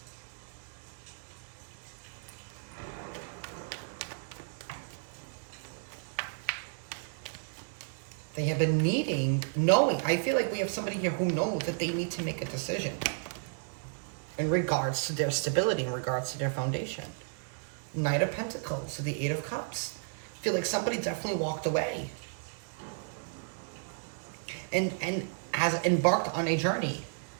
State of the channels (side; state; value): left; silent; digital silence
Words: They have been knowing, I feel like we have somebody here who knows that they need to make a decision in regards to their stability, in regards to their foundation. Knight of Pentacles to the Eight of Cups. I feel like somebody definitely walked away and has embarked on a journey.